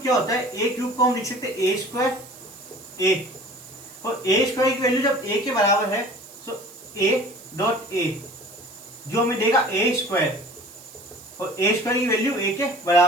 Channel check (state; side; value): noise; right; hiss, 19 dB below the sound